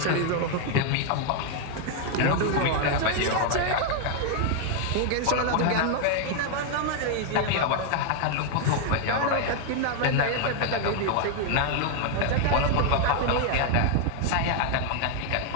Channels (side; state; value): both; different; correlation 0.00